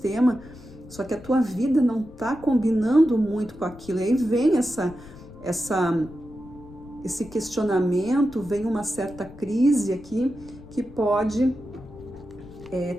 só que a tua vida não tá combinando muito com aquilo. E aí vem esse questionamento, vem uma certa crise aqui que pode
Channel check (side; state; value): left; noise; rumble, 19 dB below the sound